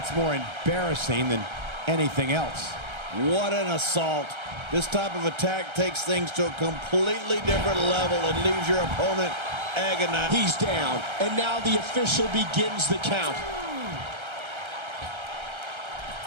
more embarrassing than anything else. What an assault. This type of attack takes things to a completely different level and leaves your opponent agonized. He's down, and now the official begins the count.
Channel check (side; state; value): left; late; 1.3 ms